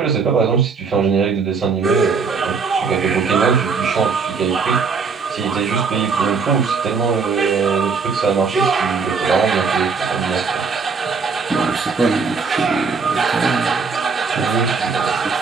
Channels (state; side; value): quieter; left; 5.2 dB